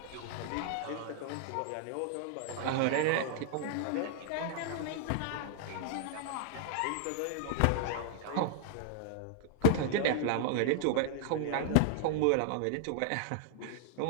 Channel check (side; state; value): both; different; correlation -0.01